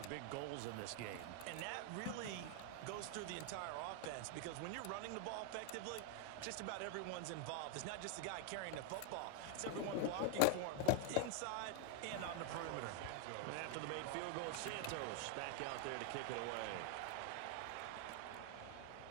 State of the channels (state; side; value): different; both; correlation 0.00